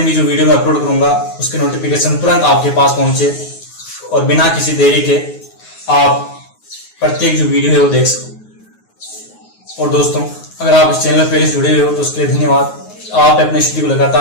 भी जो वीडियो मैं अपलोड करूंगा उसके नोटिफिकेशन तुरंत आपके पास पहुंचे और बिना किसी देरी के आप प्रत्येक जो वीडियो है वो देख सको। और दोस्तों, अगर आप इस चैनल पर पहले से जुड़े हुए हो तो उसके लिए धन्यवाद। आप अपने स्टडी को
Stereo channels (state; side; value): late; right; 9.4 ms